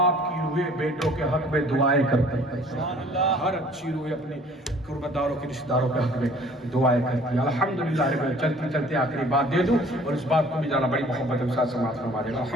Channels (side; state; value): both; normal; correlation 0.53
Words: की रूहें बेटों के हक में दुआएं करते हैं। हर अच्छी रूहें अपने कुर्बदारों के रिश्तेदारों के हक में दुआएं करती है। अल्हम्दुलिल्लाह। मैं चलते चलते आखिरी बात दे दूं और इस बात को भी जाना बड़ी मोहब्बत के साथ समाप्त फरमा देगा।